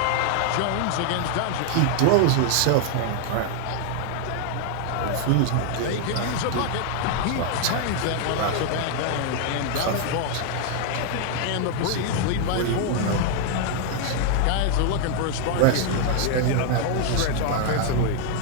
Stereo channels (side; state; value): both; different; correlation 0.00